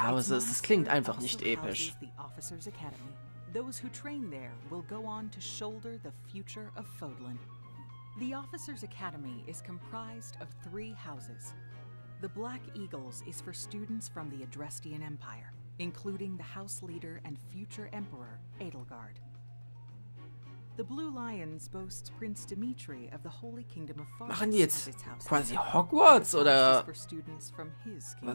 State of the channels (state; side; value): inverted; both; correlation -1.00